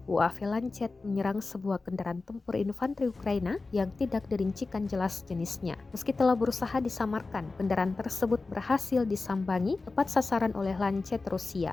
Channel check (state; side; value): quieter; right; 3.7 dB